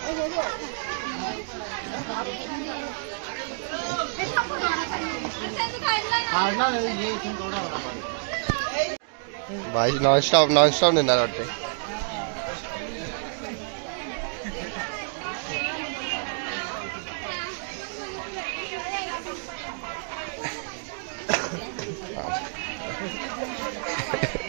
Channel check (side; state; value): left; silent; digital silence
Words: भाई नॉन स्टॉप नेणार वाटते.